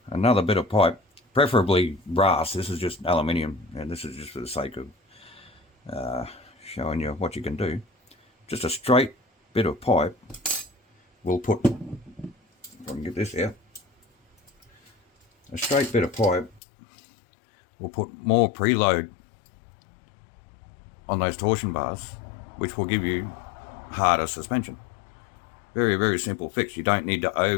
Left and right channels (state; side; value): drops out; right; at 16.6 s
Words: another bit of pipe, preferably brass. This is just aluminium, and this is just for the sake of showing you what you can do. Just a straight bit of pipe. We'll put, if I can get this out, a straight bit of pipe. We'll put more preload on those torsion bars, which will give you harder suspension. Very, very simple fix. You don't need to